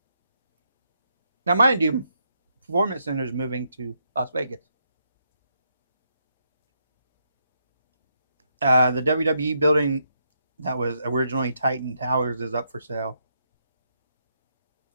Now, mind you, Performance Center is moving to Las Vegas. The WWE building that was originally Titan Towers is up for sale.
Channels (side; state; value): both; inverted; correlation -0.79